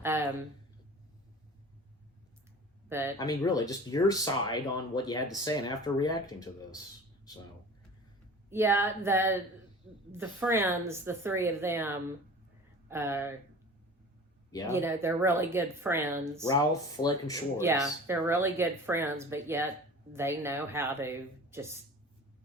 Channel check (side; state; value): both; normal; correlation 0.40